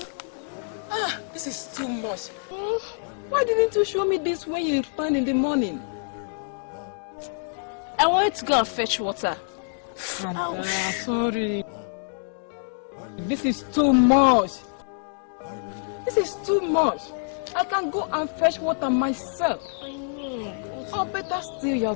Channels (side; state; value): right; silent; digital silence